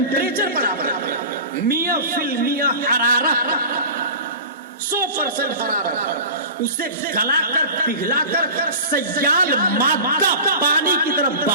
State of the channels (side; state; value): both; inverted; correlation -0.34